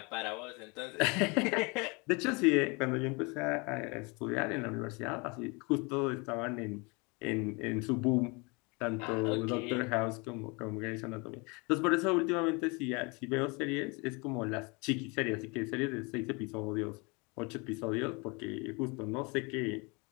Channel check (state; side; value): quieter; right; 29.3 dB